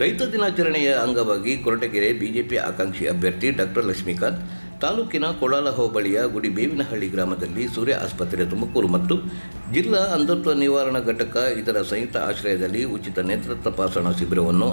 ದಿನಾಚರಣೆಯ ಅಂಗವಾಗಿ ಕೊರಟಗೆರೆ ಬಿಜೆಪಿ ಆಕಾಂಕ್ಷಿ ಅಭ್ಯರ್ಥಿ ಡಾಕ್ಟರ್ ಲಕ್ಷ್ಮೀಕಾಂತ್ ತಾಲೂಕಿನ ಕೊಳಾಲ ಹೋಬಳಿಯ ಗುಡಿಬೇವಿನಹಳ್ಳಿ ಗ್ರಾಮದಲ್ಲಿ ಸೂರ್ಯ ಆಸ್ಪತ್ರೆ ತುಮಕೂರು ಮತ್ತು ಜಿಲ್ಲಾ ಅಂಧತ್ವ ನಿವಾರಣಾ ಘಟಕ ಇದರ ಸಂಯುಕ್ತ ಆಶ್ರಯದಲ್ಲಿ ಉಚಿತ ನೇತ್ರ ತಪಾಸಣಾ ಶಿಬಿರವನ್ನು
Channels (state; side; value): inverted; both; correlation -1.00